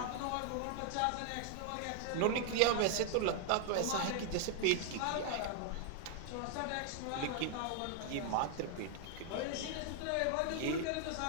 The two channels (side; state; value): both; different; correlation 0.00